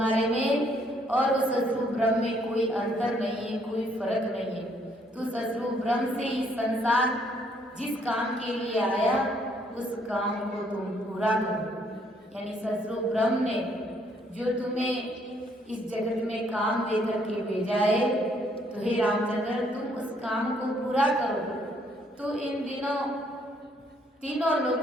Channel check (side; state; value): both; normal; correlation 0.68